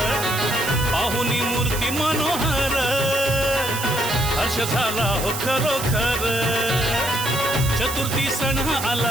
पाहुनी मूर्ती मनोहर, हर्ष झाला हो खरोखर। चतुर्थी सण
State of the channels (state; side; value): noise; right; hiss, 6 dB below the sound